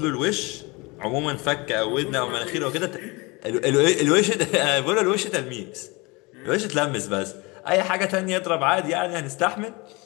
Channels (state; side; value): quieter; right; 25.9 dB